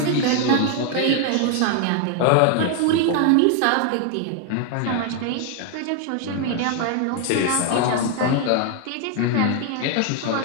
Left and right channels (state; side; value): different; both; correlation 0.00